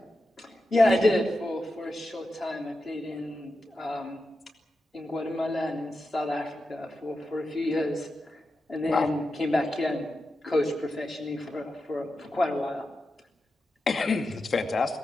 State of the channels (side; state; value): both; normal; correlation 0.90